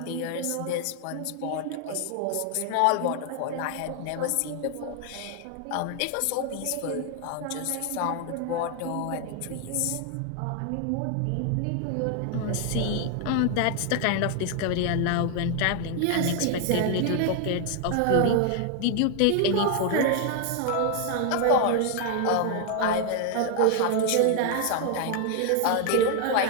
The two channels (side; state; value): both; different; correlation 0.00